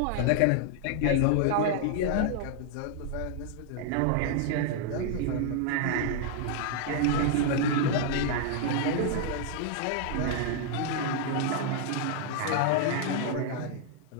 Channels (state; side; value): different; both; correlation 0.00